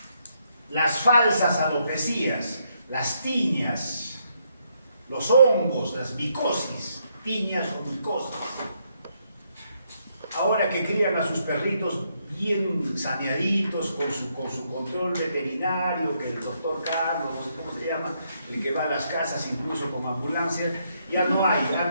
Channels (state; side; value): inverted; both; correlation -0.75